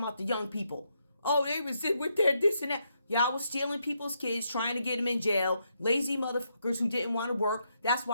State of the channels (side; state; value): both; inverted; correlation -0.79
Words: the young people. Oh, they was with their this and that. Y'all was stealing people's kids, trying to get them in jail. Lazy motherfuckers who didn't want to work. That's